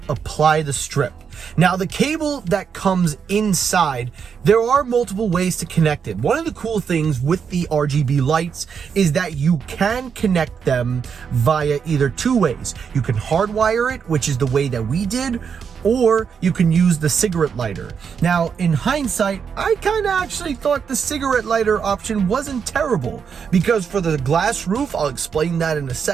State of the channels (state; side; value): quieter; left; 6.7 dB